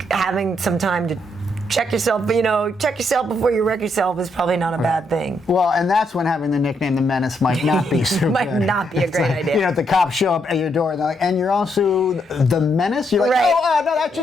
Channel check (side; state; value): both; normal; correlation 0.76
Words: having some time to check yourself before you wreck yourself is probably not a bad thing. Well, and that's when having the nickname The Menace might not be so Might good. not be a great idea. The cops show up at your door and they're like, and you're also The Menace? You're like, Right. no, that's